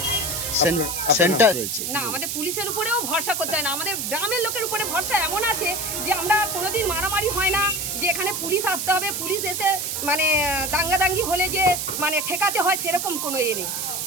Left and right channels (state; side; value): noise; right; hiss, 2 dB below the sound